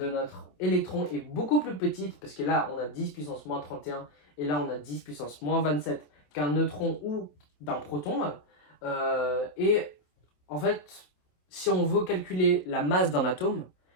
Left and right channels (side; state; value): right; late; 27 ms